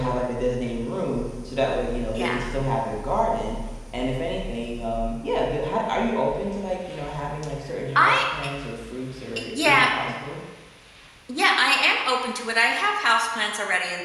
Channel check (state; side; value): identical; both; correlation 1.00